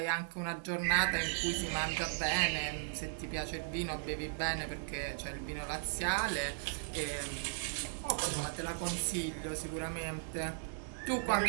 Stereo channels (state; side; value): silent; left; digital silence